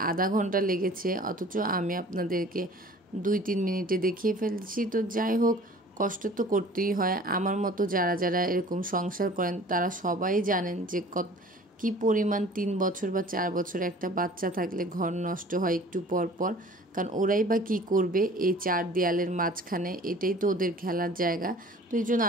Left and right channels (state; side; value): normal; both; correlation 0.47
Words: আধা ঘন্টা লেগেছে, অথচ আমি আপনাদেরকে 2-3 মিনিটে দেখিয়ে ফেলছি। তো যাই হোক, কষ্ট তো করতেই হয়। আমার মতো যারা যারা এরকম সংসার করেন তারা সবাই জানেন যে কী পরিমাণ 3 বছর বা 4 বছর একটা বাচ্চা থাকলে ঘর নষ্ট হয় একটু পর পর। কারণ ওরাই বা কী করবে এই 4 দেয়ালের মাঝখানে, এটাই তো ওদের খেলার জায়গা। তো এই জন্য